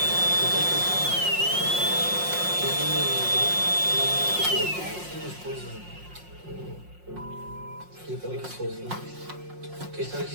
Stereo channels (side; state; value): left; late; 5.6 ms